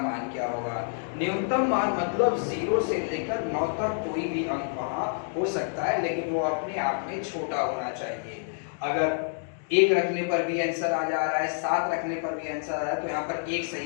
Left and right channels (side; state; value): right; silent; digital silence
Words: क्या होगा। न्यूनतम मान मतलब 0 से लेकर 9 तक कोई भी अंक वहां हो सकता है, लेकिन वो अपने आप में छोटा होना चाहिए। अगर 1 रखने पर भी आंसर आ जा रहा है, 7 रखने पर भी आंसर आ रहा है, तो यहाँ पर 1